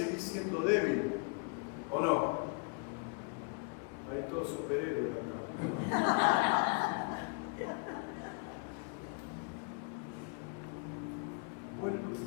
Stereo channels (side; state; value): right; quieter; 36.0 dB